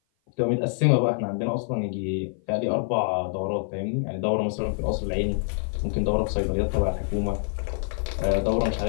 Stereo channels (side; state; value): right; silent; 56 dB below the other